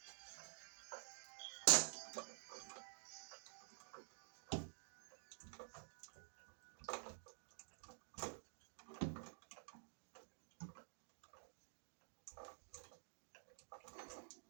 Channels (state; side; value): silent; left; digital silence